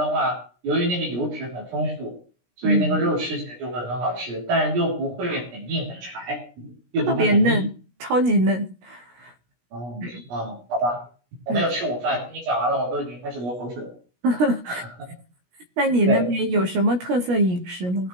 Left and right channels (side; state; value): left; late; 17 ms